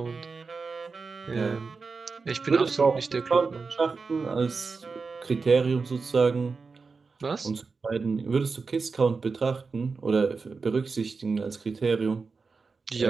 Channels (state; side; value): quieter; left; 4.6 dB